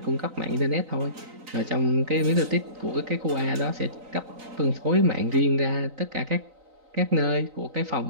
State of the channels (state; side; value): late; left; 3.9 ms